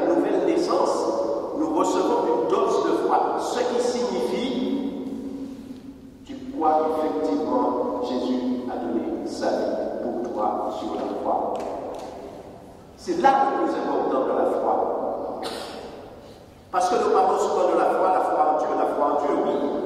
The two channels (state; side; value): identical; both; correlation 1.00